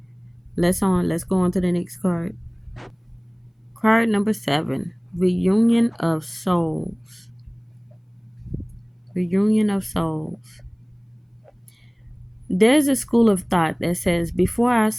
Let's go on to the next card. Card number 7. Reunion of Souls. Reunion of Souls. There's a school of thought that says before our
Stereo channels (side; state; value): both; identical; correlation 1.00